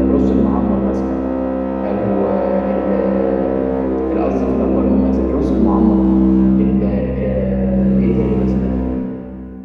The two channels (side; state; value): both; identical; correlation 1.00